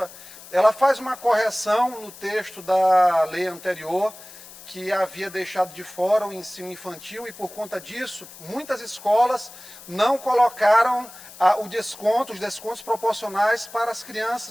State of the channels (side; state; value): left; noise; hiss, 18 dB below the sound